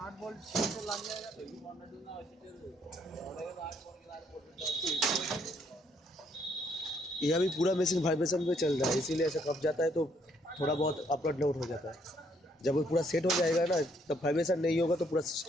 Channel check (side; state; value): both; normal; correlation 0.69